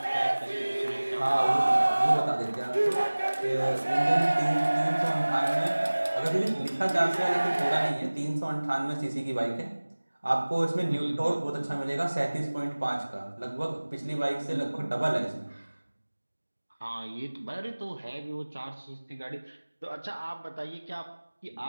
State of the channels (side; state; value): both; inverted; correlation -1.00